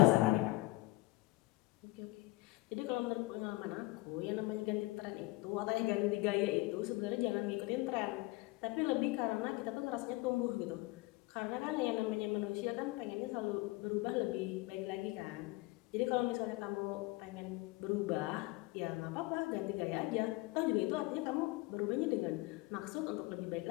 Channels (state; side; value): quieter; right; 21.3 dB